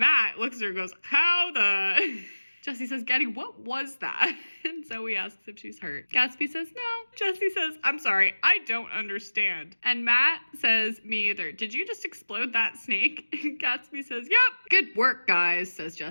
looks at her and goes, how the... Jessie says, Getty, what was that? And Zoe asks if she's hurt. Gatsby says, no. Jessie says, I'm sorry, I don't understand. And Matt says, me either. Did you just explode that snake? And Gatsby says, yep. Good work, guys, says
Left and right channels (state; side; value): inverted; both; correlation -1.00